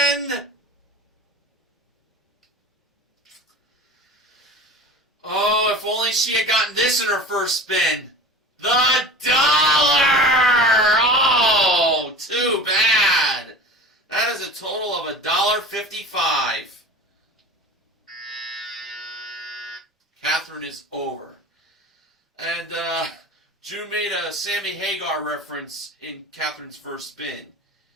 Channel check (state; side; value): normal; both; correlation 0.37